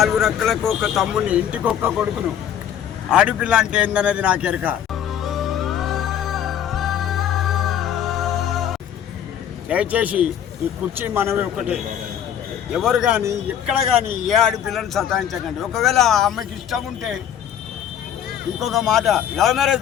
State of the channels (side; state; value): right; quieter; 9.6 dB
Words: రెక్కలకు ఒక తమ్ముని, ఇంటికి ఒక్క కొడుకును. ఆడపిల్ల అంటే ఏందనేది నాకు ఎరక. దయచేసి ఈ కుర్చీ మనమే ఒకటే. ఎవరు కానీ ఎక్కడ కానీ ఏ ఆడపిల్లని సతాయించకండి. ఒకవేళ ఆ అమ్మాయికి ఇష్టం ఉంటే ఇంకొక మాట, love